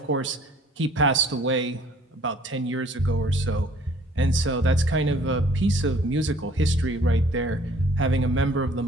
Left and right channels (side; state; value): both; normal; correlation 0.56